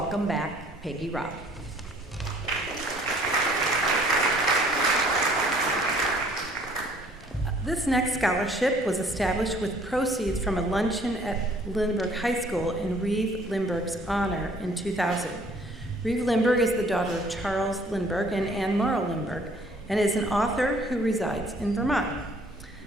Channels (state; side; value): normal; both; correlation 0.58